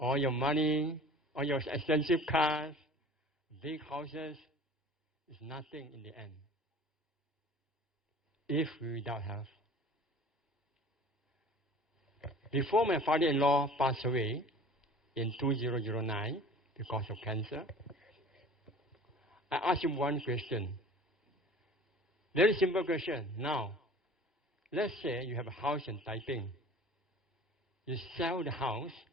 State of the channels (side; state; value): both; normal; correlation 0.44